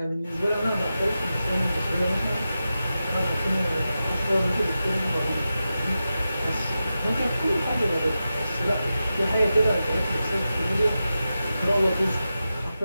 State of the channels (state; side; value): inverted; both; correlation -0.92